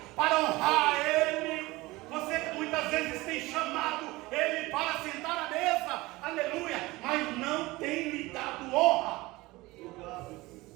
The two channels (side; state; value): left; quieter; 20.6 dB